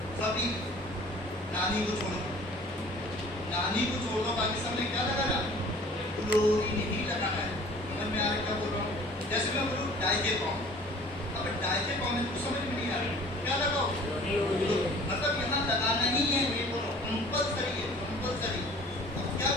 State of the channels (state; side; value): normal; both; correlation 0.49